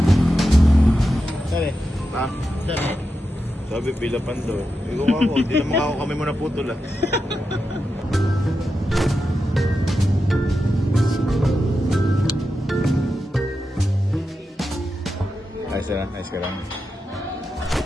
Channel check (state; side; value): normal; both; correlation 0.89